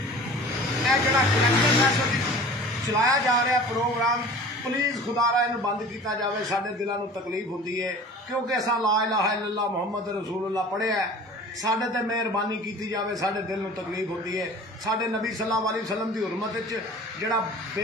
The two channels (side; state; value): both; normal; correlation 0.42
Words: जिहड़ा कलैक्टर फैसला चलाया जा रहा प्रोग्राम, प्लीज़ खुदारा इन्हूं बंद किया जाए। साडे दिलों को तकलीफ होती है क्योंकि असां ला इलाहा इल्लल्लाह मुहम्मद रसूलुल्लाह पढ़िया है। साडे ते मेहरबानी की जाए, साडे दिल में तकलीफ होती है। साडे नबी सल्लल्लाहु अलैहि वसल्लम की हुरमत जिहड़ा